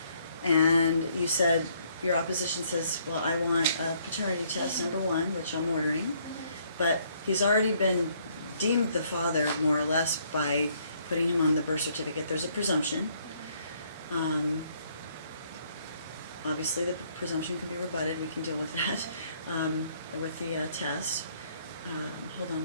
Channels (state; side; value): inverted; both; correlation -0.67